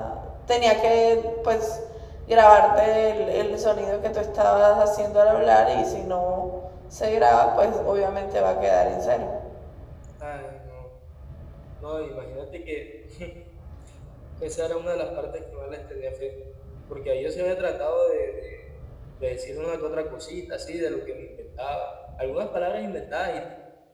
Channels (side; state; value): both; identical; correlation 1.00